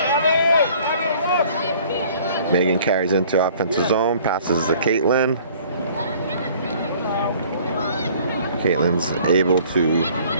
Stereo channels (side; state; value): both; inverted; correlation -0.54